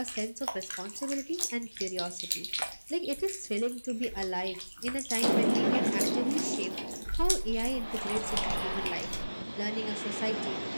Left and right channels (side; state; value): both; inverted; correlation -1.00